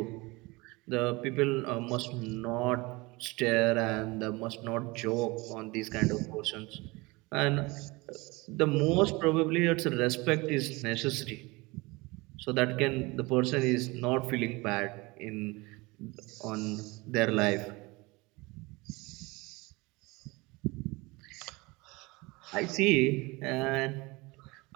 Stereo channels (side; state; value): left; quieter; 24.0 dB